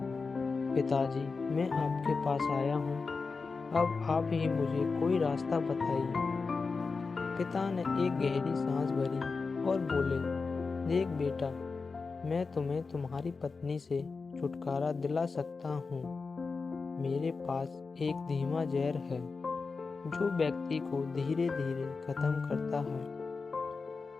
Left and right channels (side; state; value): right; quieter; 4.5 dB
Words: पिताजी, मैं आपके पास आया हूँ, अब आप ही मुझे कोई रास्ता बताइए। पिता ने एक गहरी सांस भरी और बोले, देख बेटा, मैं तुम्हें तुम्हारी पत्नी से छुटकारा दिला सकता हूँ। मेरे पास एक धीमा जहर है जो व्यक्ति को धीरे धीरे खत्म करता है।